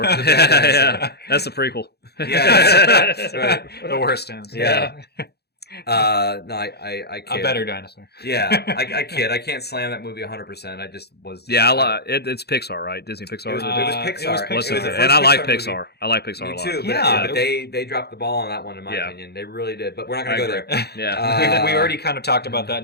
Yeah. That's the prequel. Yeah, that's right. The worst ones. Yeah. No, I kid. A better dinosaur. Yeah, I kid. I can't slam that movie 100%. I just was. Yeah, it's Pixar, right? Disney Pixar. It was Pixar. It was and I like Pixar. Movie. I like Pixar a lot. Me too. But they dropped the ball on that one, in my opinion. They really did. But we're not going to go there. Yeah, we already kind of talked about that in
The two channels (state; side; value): late; right; 0.47 ms